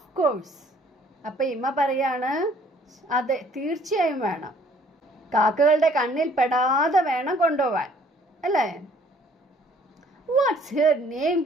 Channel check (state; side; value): normal; both; correlation 0.59